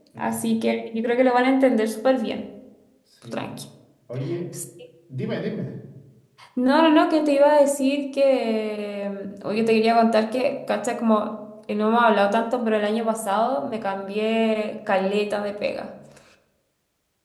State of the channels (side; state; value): both; identical; correlation 1.00